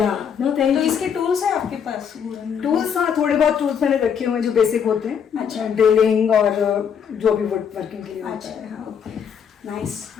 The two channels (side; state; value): right; quieter; 7.5 dB